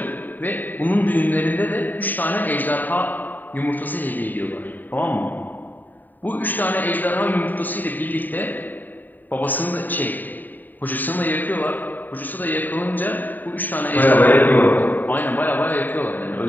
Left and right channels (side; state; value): right; late; 0.088 ms